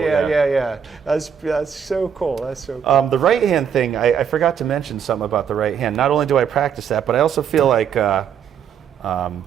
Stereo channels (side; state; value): left; quieter; 7.8 dB